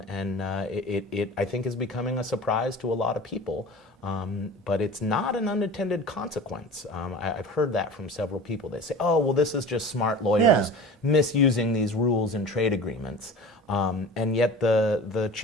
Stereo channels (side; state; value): both; normal; correlation 0.37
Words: it, I think, is becoming a surprise to a lot of people. But it's not an unintended consequence. I've heard that from several people. They say, oh, well, this is just smart lawyers misusing these rules in trade agreements. And yet the